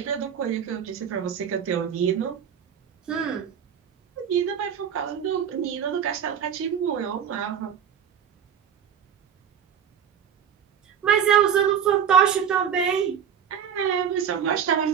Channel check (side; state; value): left; quieter; 8.2 dB